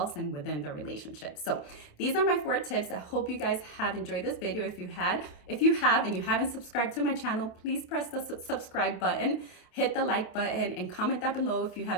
and within the relationship. So these are my 4 tips. I hope you guys have enjoyed this video. If you have and you haven't subscribed to my channel, please press the subscribe button, hit the like button, and comment down below if you have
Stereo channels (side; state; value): right; late; 28 ms